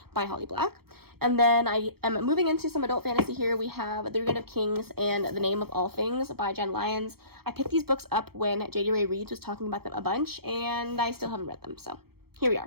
by Holly Black. And then I am moving into some adult fantasy here. We have The Reign of Kings and The Name of All Things by Jen Lyons. I picked these books up when J.D. Ray Reeves was talking about them a bunch, and I still haven't read them, so here we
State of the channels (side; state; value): left; late; 0.95 ms